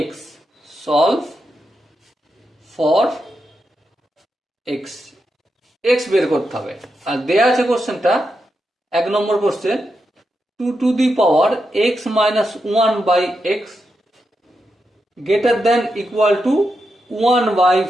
X, solve for X, X বের করতে হবে। আর দেয়া আছে কোশ্চেনটা 1 নম্বর question 2 to the power x minus 1/x greater than equal to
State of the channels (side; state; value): both; normal; correlation 0.86